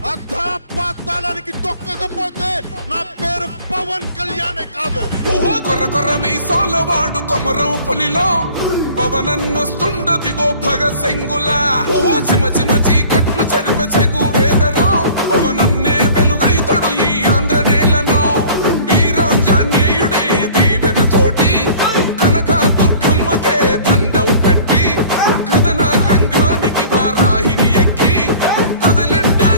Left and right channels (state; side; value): inverted; both; correlation -0.47